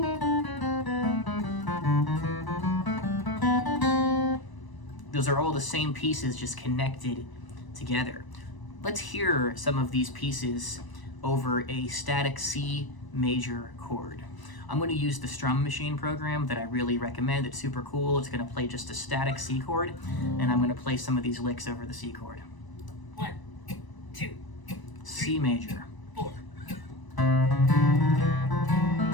Those are all the same pieces, just connected together. Let's hear some of these pieces over a static C major chord. I'm going to use the Strum Machine program that I really recommend. It's super cool. It's going to play just a static C chord, and I'm going to play some of these licks over the C chord. 1, 2, C major. 4.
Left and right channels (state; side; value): late; right; 1.0 ms